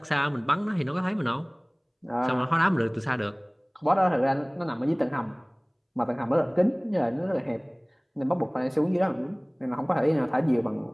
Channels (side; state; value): both; identical; correlation 1.00